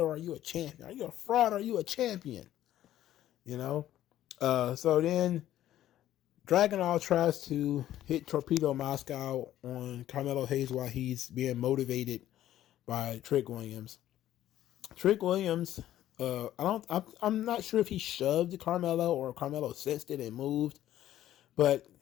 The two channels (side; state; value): right; quieter; 12.8 dB